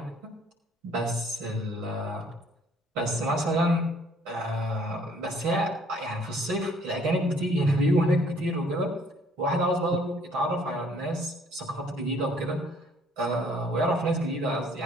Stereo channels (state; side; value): normal; both; correlation 0.60